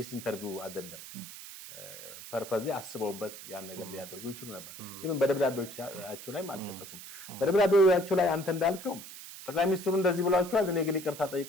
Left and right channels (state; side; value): noise; right; hiss, 13 dB below the sound